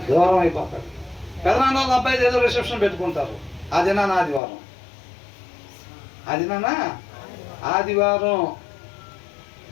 దూరం అయిపోతాడు. పెదనాన్న వాళ్ళ అబ్బాయి ఏదో రిసెప్షన్ పెట్టుకుంటారు. అదినా ఆదివారం, అదినా ఆదివారం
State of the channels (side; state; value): right; drops out; at 4.4 s